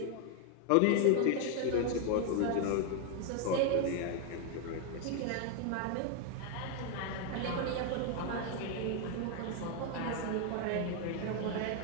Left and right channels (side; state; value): both; different; correlation 0.01